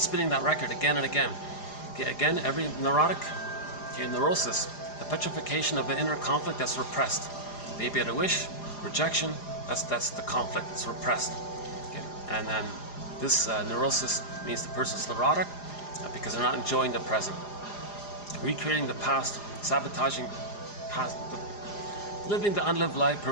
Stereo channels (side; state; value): right; late; 4.9 ms